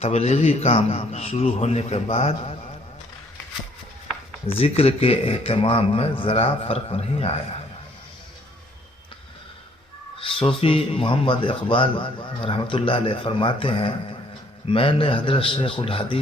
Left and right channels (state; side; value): normal; both; correlation 0.63